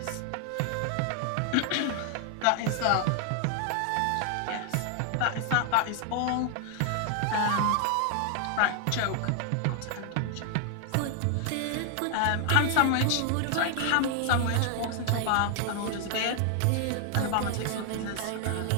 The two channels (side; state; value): both; different; correlation 0.00